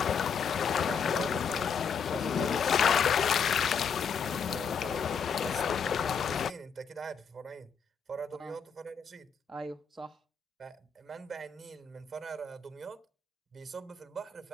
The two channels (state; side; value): quieter; right; 6.3 dB